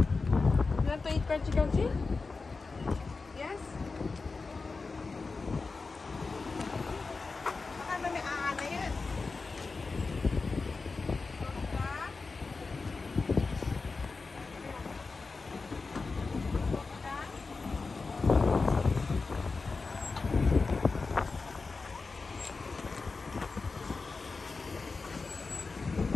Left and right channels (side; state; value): right; quieter; 4.1 dB